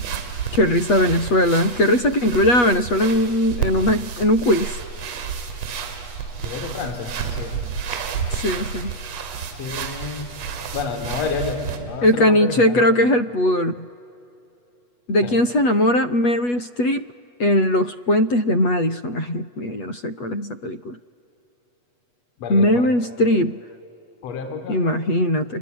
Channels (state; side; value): late; right; 8.2 ms